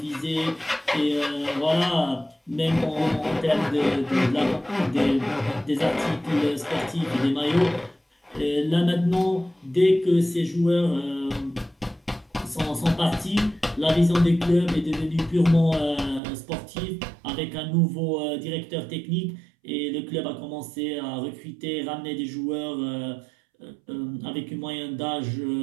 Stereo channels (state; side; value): drops out; left; at 16.2 s